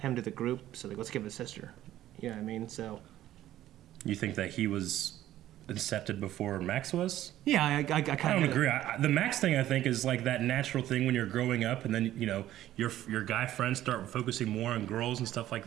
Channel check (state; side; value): quieter; left; 13.4 dB